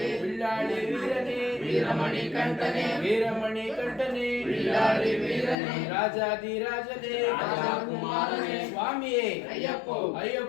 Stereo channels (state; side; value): drops out; right; at 5.6 s